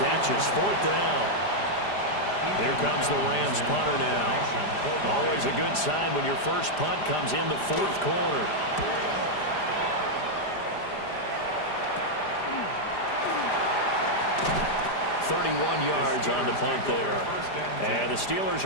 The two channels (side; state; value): right; late; 5.0 ms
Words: catches. 4th down. Here comes the Rams punter now. Always a good sign when your first punt comes in the 4th quarter. 31 yards on the punt there. And the Steelers